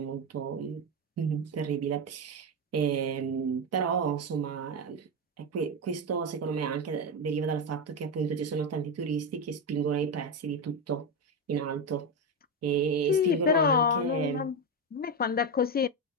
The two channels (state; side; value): normal; both; correlation 0.11